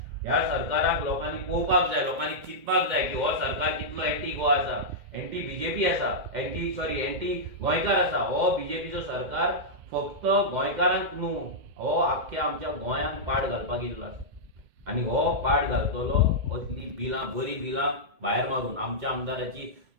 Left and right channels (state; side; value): late; left; 2.1 ms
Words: ह्या सरकाराक लोकांनी पळोवपाक जाय, लोकांनी चिंतपाक जाय की हो सरकार कितलो एंटी गोवा आसा, एंटी बीजेपी आसा, एंटी गोंयकार आसा. हो बीजेपीचो सरकार फक्त गोंयकारांक न्हू, हो आख्ख्या आमच्या गोंयांक पाड घालपाक येयल्लो आसा. आनी हो पाड घालतलो असली बिलां, बरी बिलां भायर मारून आमच्या आमदाराची